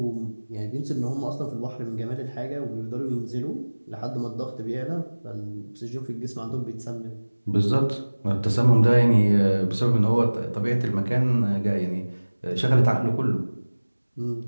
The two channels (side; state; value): both; inverted; correlation -1.00